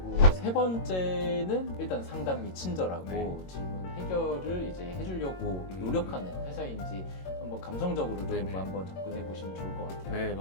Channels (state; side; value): late; right; 22 ms